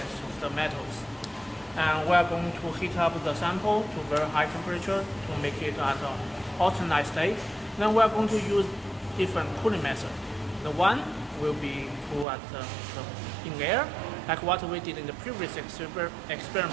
of the metals. And we are going to heat up the sample to very high temperature to make it at an alternate state. Then we are going to use different cooling methods. The one will be cool at in air, like what we did in the previous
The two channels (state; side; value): drops out; left; at 12.2 s